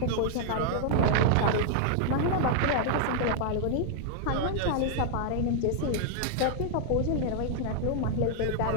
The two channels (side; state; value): both; different; correlation 0.00